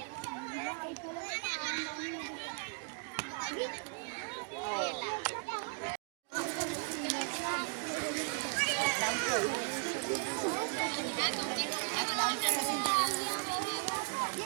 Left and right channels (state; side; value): quieter; left; 37.9 dB